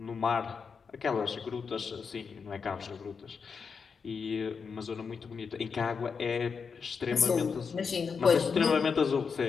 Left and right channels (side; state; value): right; quieter; 5.7 dB